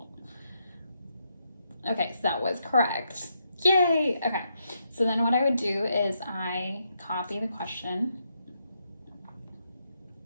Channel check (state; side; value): inverted; both; correlation -0.80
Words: Okay, so that was correct. Yay! Okay, so then what I would do is I copy the question